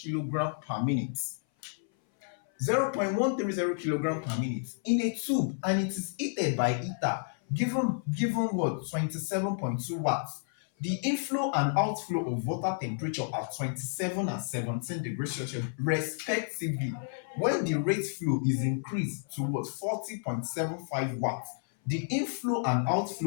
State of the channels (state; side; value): silent; right; 57 dB below the other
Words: per minute. 0.130 kilogram per minute in a tube, and it is heated by heater given what? 27.2 watts. The inflow and outflow of water temperature at 27 and 17 degrees Celsius respectively when the rate flow is increased to what? 40.75 watts. The inflow and